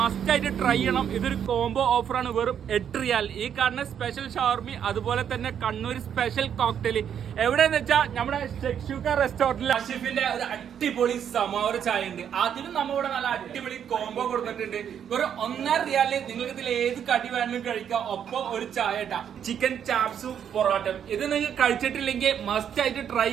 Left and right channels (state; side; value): quieter; left; 8.7 dB